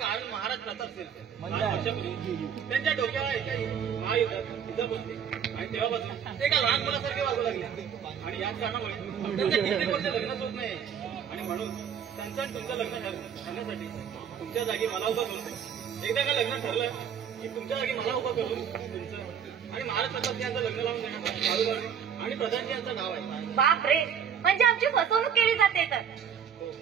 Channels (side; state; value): left; quieter; 8.0 dB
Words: कारण महाराज प्रताप सिंह. 5 वर्षापूर्वी त्यांच्या डोक्यावर एका महायुद्धात इजा बसली आणि तेव्हापासून ते एका लहान मुलासारखे वागू लागले. आणि याच कारणामुळे त्यांचं कित्येक वर्ष लग्नच होत नाही. आणि म्हणून त्यांचं आणि तुमचं लग्न करण्यासाठी तुमच्या जागी मला उभं करून एकदा का लग्न ठरलं की तुमच्या जागी मला उभं करून तुमचं आणि महाराज प्रताप यांचं लग्न लावून देण्यात आणि प्रधानजी यांचं नाव आहे. बाप रे, म्हणजे आमची फसवणूक केली जाते तर.